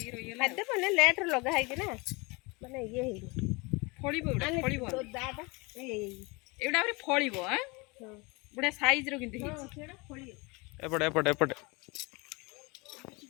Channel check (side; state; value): right; quieter; 27.0 dB